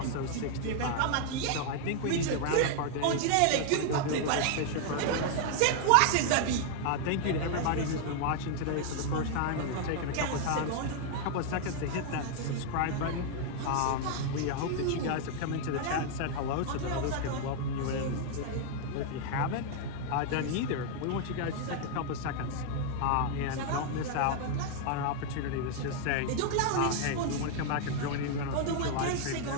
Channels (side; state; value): both; different; correlation 0.00